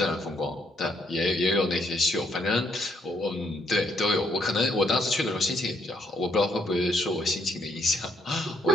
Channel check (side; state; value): both; normal; correlation 0.71